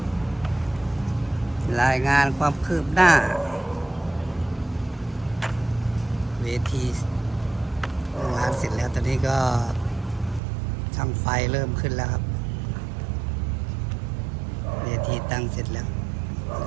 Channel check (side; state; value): left; drops out; at 10.4 s